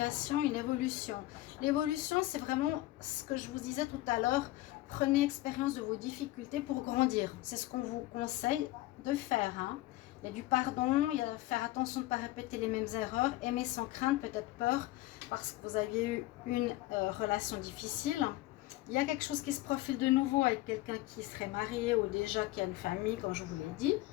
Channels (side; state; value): right; quieter; 17.1 dB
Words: une évolution. L'évolution, c'est vraiment ce que je vous disais tout à l'heure. Prenez expérience de vos difficultés pour grandir. C'est ce qu'on vous conseille de faire. Hein. Il y a du pardon, il y a faire attention de ne pas répéter les mêmes erreurs, aimer sans crainte, peut-être peur, parce que vous aviez eu une relation difficile. Il y a quelque chose qui se profile de nouveau avec quelqu'un qui serait marié ou déjà qui a une famille, comme je vous l'ai dit.